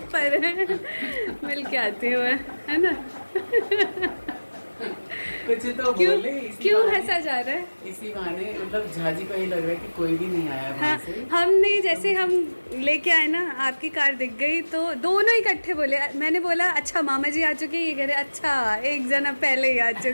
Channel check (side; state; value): both; inverted; correlation -1.00